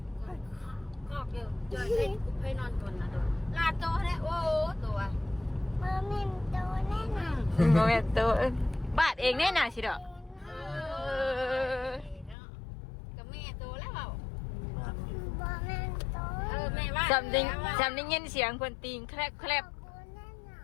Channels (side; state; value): right; drops out; at 12.4 s